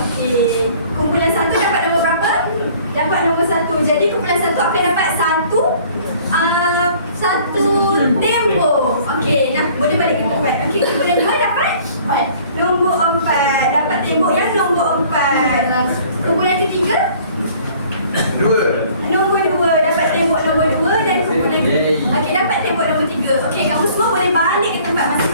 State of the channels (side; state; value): both; inverted; correlation -0.54